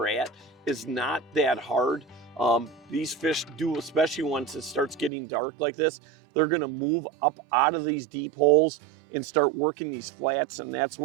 at is not that hard. These fish do, especially once it starts getting dark like this, they're going to move up out of these deep holes and start working these flats, and that's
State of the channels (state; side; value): drops out; left; at 5.1 s